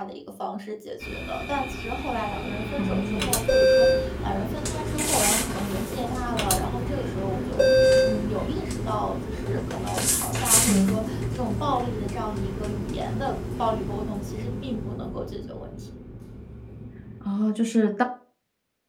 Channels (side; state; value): both; identical; correlation 1.00